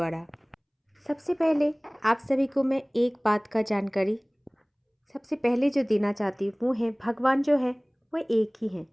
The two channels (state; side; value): identical; both; correlation 1.00